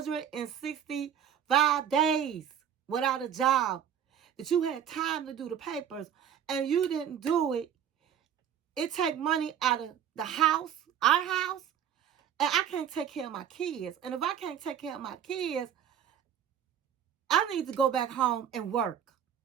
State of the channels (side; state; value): left; quieter; 9.2 dB